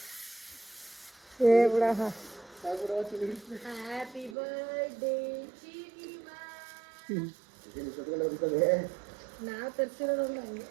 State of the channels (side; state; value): left; drops out; at 4.4 s